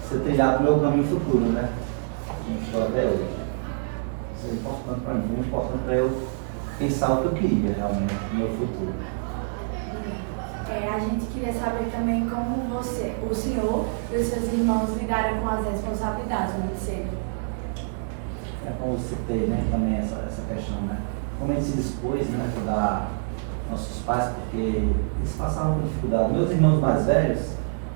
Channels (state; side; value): silent; left; digital silence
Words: trilhado no meu caminho futuro, né? Como estou até hoje. Isso é importante para mim, muito importante para eu pensar o que eu queria realmente no meu futuro. A gente queria saber também como o senhor e os seus irmãos lidaram com as responsabilidades muito cedo. É como eu citei, né, também essa questão, né? Como a gente se dispôs, né, a ajudar nossos pais, porque eles passavam por dificuldade. Meus irmãos mais velhos